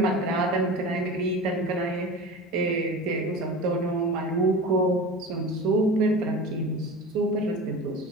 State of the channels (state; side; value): normal; both; correlation 0.32